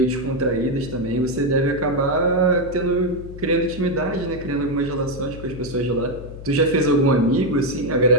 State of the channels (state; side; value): noise; left; hum, 13 dB below the sound